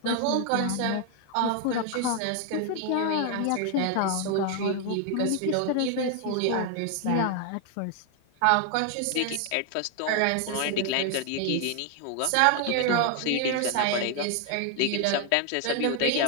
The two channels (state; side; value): different; both; correlation 0.01